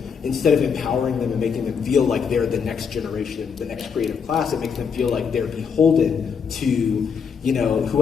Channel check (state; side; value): quieter; right; 6.4 dB